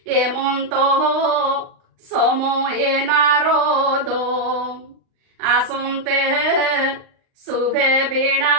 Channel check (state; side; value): late; left; 38 ms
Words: এমন্ত সময়ে নারদ আসন্তে শুভে